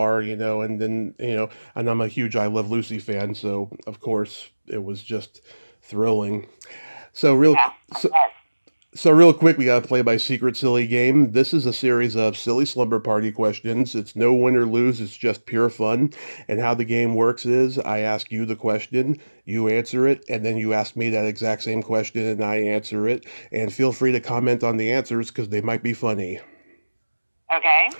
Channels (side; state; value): both; inverted; correlation -1.00